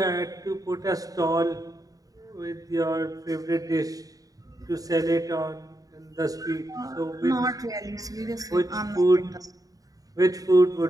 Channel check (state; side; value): late; left; 0.18 ms